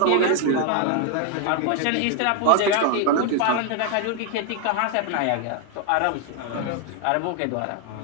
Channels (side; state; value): both; different; correlation 0.00